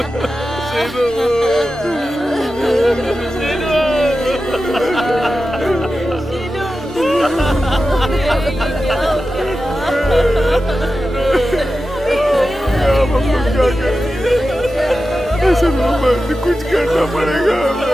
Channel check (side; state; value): both; normal; correlation 0.93